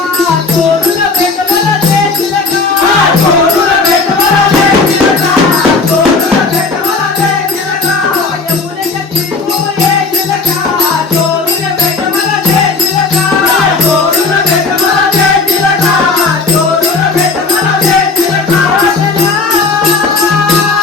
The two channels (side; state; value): right; quieter; 4.0 dB